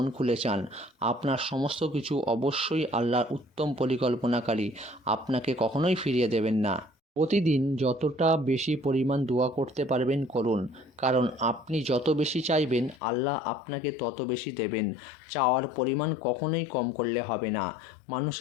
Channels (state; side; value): drops out; right; at 13.0 s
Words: খুলে চান। আপনার সমস্ত কিছু অবশ্যই আল্লাহর উত্তম পরিকল্পনাকারী, আপনাকে কখনোই ফিরিয়ে দেবেন না। প্রতিদিন যতটা বেশি পরিমাণ দোয়া করতে পারবেন করুন, কারণ আপনি যত বেশি চাইবেন আল্লাহ আপনাকে তত বেশি দেবেন। চাওয়ার পরিমাণ কখনোই কম করলে হবে না।